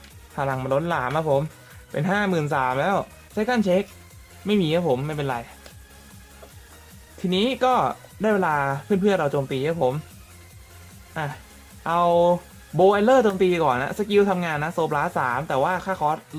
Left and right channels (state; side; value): identical; both; correlation 1.00